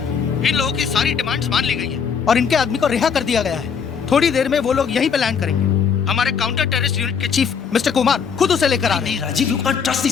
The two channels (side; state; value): right; quieter; 6.6 dB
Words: इन लोगों की सारी डिमांड्स मान ली गई है और इनके आदमी को रिहा कर दिया गया है। थोड़ी देर में वो लोग यहीं पे लैंड करेंगे। हमारे काउंटर टेररिस्ट यूनिट के चीफ मिस्टर कुमार खुद उसे लेकर आ रहे हैं। Rajiv, you can't trust